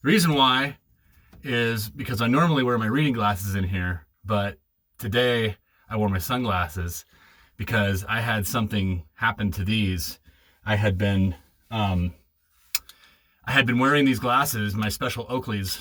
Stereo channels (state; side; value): identical; both; correlation 1.00